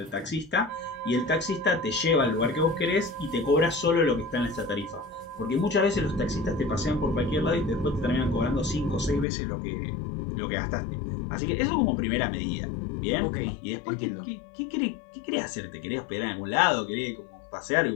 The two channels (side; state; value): right; drops out; at 9.2 s